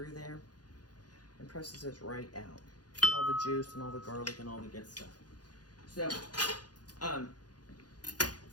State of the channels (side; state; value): right; late; 0.69 ms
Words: there? And presses this right out. Get all the juice and all the garlic and all the good stuff. So,